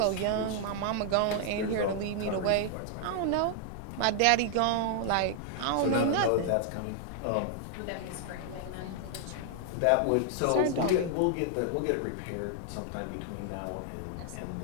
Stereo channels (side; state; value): both; different; correlation 0.00